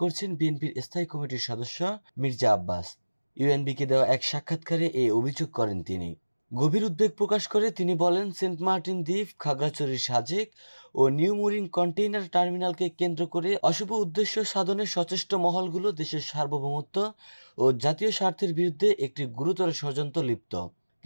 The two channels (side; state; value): both; inverted; correlation -1.00